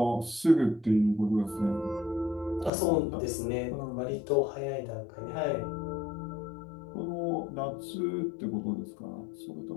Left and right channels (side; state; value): right; drops out; at 2.7 s